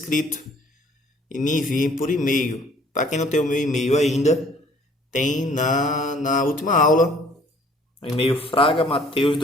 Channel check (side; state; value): both; normal; correlation 0.57